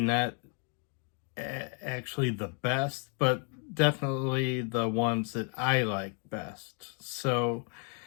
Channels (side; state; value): right; quieter; 39.9 dB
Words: actually the best, but definitely the ones that I like best. So